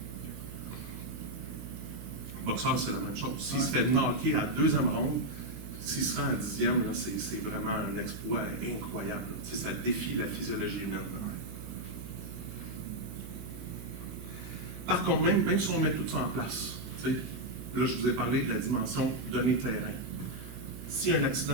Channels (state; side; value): noise; right; hum, 12 dB below the sound